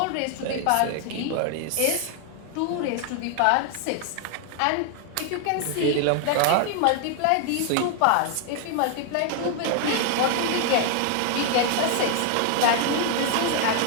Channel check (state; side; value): different; both; correlation 0.00